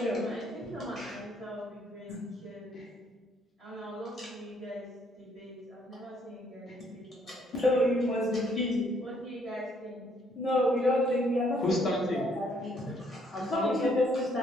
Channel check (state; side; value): normal; both; correlation 0.67